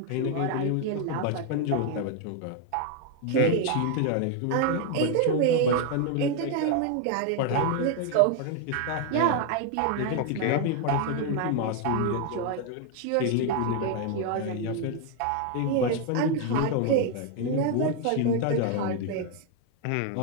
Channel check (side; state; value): both; different; correlation 0.00